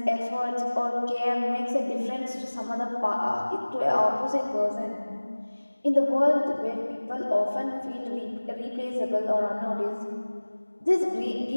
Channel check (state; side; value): inverted; both; correlation -1.00